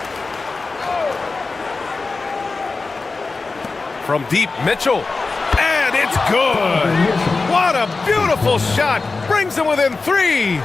From deep, Mitchell. And it's good. What a beautiful shot. Brings them within 3.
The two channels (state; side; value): quieter; right; 3.9 dB